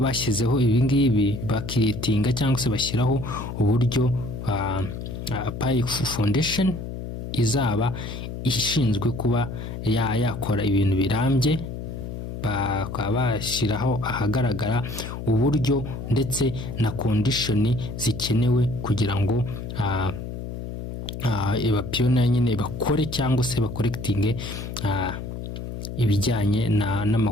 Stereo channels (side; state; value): left; noise; hum, 7 dB below the sound